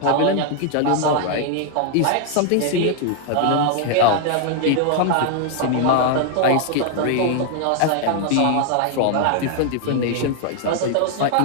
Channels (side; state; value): both; different; correlation 0.00